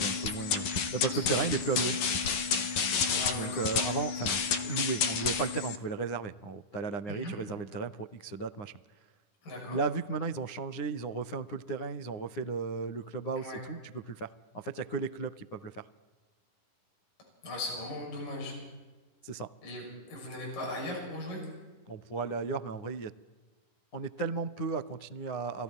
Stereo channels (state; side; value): late; right; 11 ms